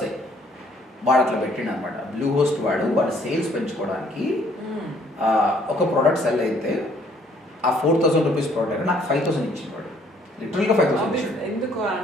వాడు అట్లా పెట్టిండు అనమాట. బ్లూ హోస్ట్ వాడు సేల్స్ పెంచుకోవడానికి ఒక ప్రోడక్ట్ సెల్ అయితే ఆ 4,000 రూపీస్ ప్రోడక్ట్ నాకు 5,000 ఇచ్చింది వాడు, లిటరల్గా 5,000 ఇచ్చిండు.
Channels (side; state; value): both; normal; correlation 0.62